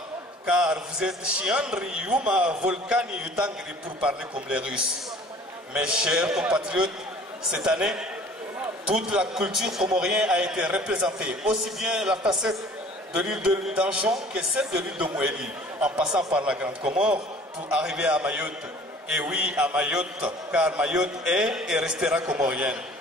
car vous êtes Chiandri, Yuma, Volcani, Yutangri pour parler comme les Russes. Mes chers compatriotes, cette année, toute la culture comorienne a été représentée, aussi bien la facette de l'île d'Anjon que celle de l'île de Mouéli, en passant par la Grande Comore pour arriver à Mayotte. Et oui, à Mayotte, car Mayotte est et restera comorienne.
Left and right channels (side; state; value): both; normal; correlation 0.50